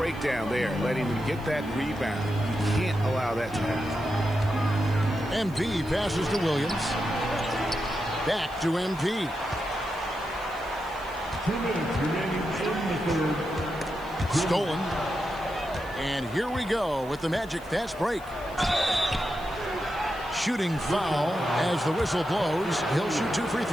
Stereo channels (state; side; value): noise; right; hiss, 24 dB below the sound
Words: there, letting him get that rebound. You can't allow that to happen. MP passes to Williams. Back to MP. 2 minutes remaining in the third. Stolen. And here we go with the Magic fast break. Shooting foul as the whistle blows. He'll shoot 2 free